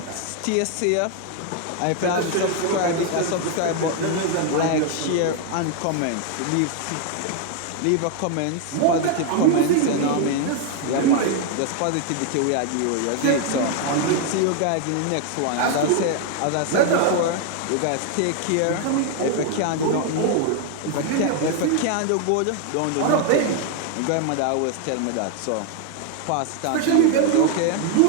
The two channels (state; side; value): different; both; correlation 0.00